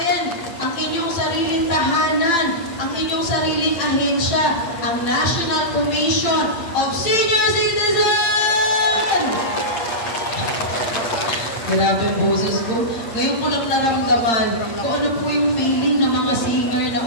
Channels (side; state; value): right; late; 8.9 ms